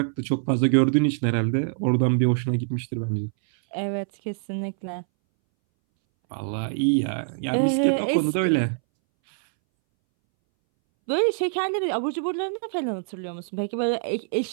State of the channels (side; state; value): left; silent; 62 dB below the other